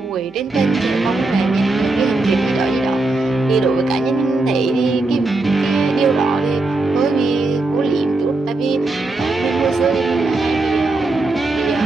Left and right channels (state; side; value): quieter; left; 3.2 dB